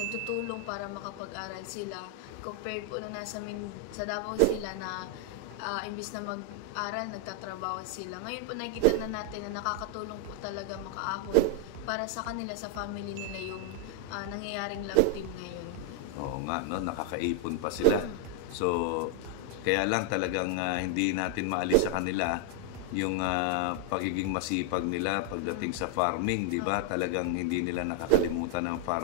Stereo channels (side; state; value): both; different; correlation 0.00